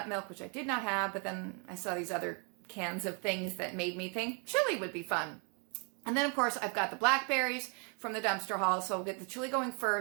milk, which I did not have, but then I saw these other cans of things that made me think chili would be fun. And then, of course, I've got the blackberries from the dumpster haul, so I'll get the chili going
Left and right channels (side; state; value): left; quieter; 36.7 dB